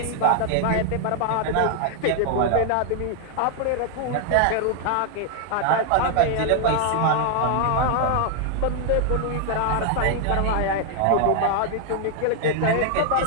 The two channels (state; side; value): different; both; correlation 0.00